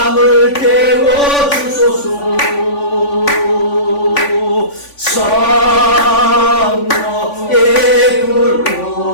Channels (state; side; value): late; right; 3.5 ms